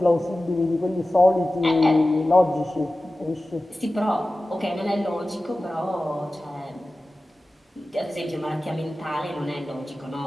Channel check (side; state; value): both; normal; correlation 0.95